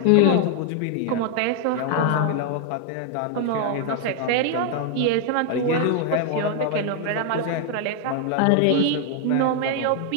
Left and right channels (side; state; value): both; different; correlation 0.00